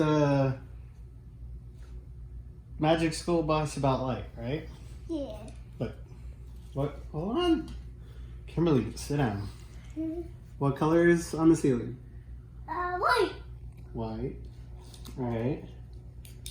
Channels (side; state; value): both; identical; correlation 1.00